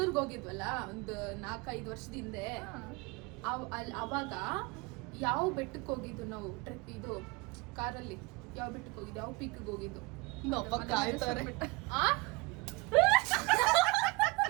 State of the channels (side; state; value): left; quieter; 26.2 dB